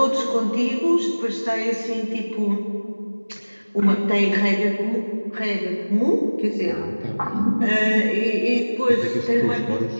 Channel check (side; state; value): both; inverted; correlation -1.00